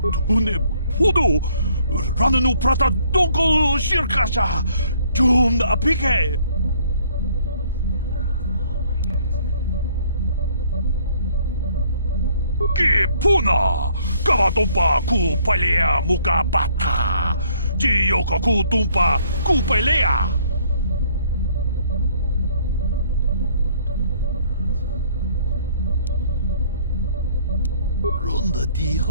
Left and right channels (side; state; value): both; inverted; correlation -0.62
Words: Tune pudu. Rananu prata donko shirkasha. Jum apike. Puna! Kavatumpa ku palea muka bata! Jiyoka ku tumpa ku pelea! Runda di